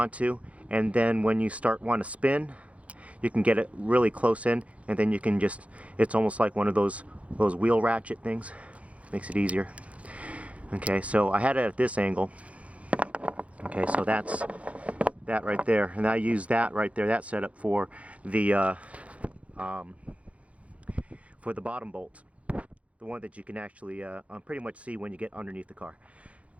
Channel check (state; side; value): late; left; 0.064 ms